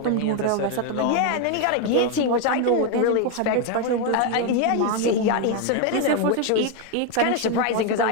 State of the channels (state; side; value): different; both; correlation 0.01